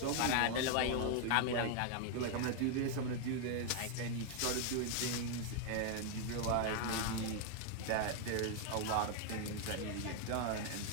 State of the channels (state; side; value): different; both; correlation 0.00